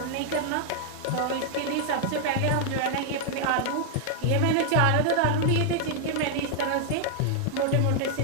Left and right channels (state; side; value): different; both; correlation 0.00